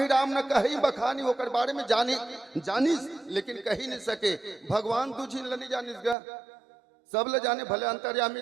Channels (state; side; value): drops out; left; at 6.2 s